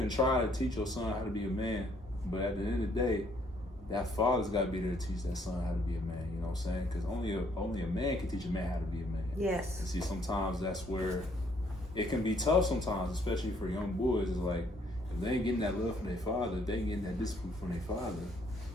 try to teach your son how to be a man, but at the end of the day, that father's got to be there to teach that son how to be a man. You know what I'm saying? Because only a man can teach a man how to be a man. Yes. And see, sometimes that's where it can be tough sometimes, especially for young boys. It's like, if they ain't getting that love from their father, if they ain't getting that discipline from their father,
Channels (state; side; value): normal; both; correlation 0.66